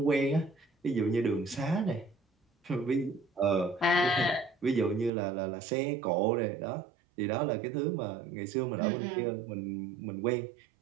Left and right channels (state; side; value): drops out; left; at 5.1 s